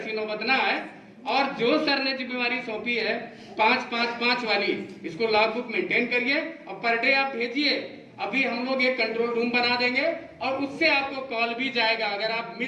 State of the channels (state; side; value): identical; both; correlation 1.00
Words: नौबत ना आए। और जो सर ने जिम्मेवारी सौंपी है 5-5-5 वाली, इसको लॉग बुक मेंटेन करिए और पर डे आप भेजिए। अभी हम लोग एक कंट्रोल रूम बना देंगे और उससे आपको कॉल भी जाएगा। अगर आप